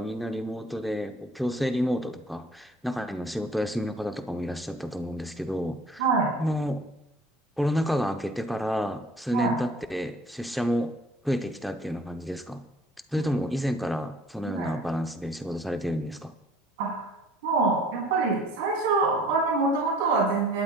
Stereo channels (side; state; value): both; normal; correlation 0.52